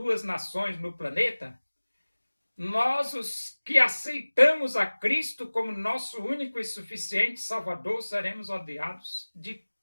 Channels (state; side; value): inverted; both; correlation -1.00